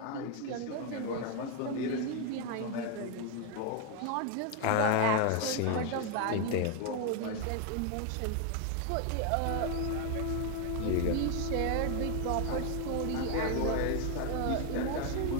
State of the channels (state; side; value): different; both; correlation 0.01